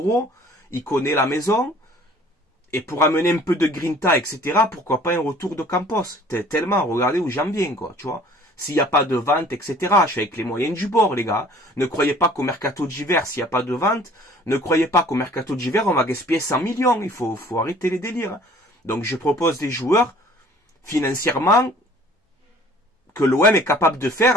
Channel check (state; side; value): normal; both; correlation 0.52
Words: il connaît la maison, et pour amener un peu de Grinta, etc., pourquoi pas un retour de Campos. Tellement, regardez où j'en viens, quoi, tu vois. S'il n'y a pas de vente, etc., je suis avec les moyens du bord, les gars. Ne croyez pas qu'au mercato d'hiver, s'il n'y a pas de vente, ne croyez pas qu'au mercato d'hiver, on va gaspiller 100 millions. Il faut arrêter les délires. Donc, je propose des joueurs, financièrement, que l'OM est capable de faire